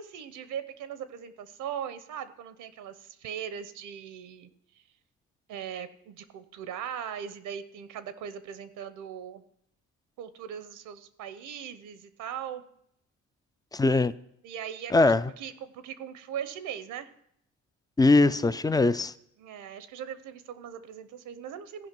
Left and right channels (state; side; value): normal; both; correlation 0.71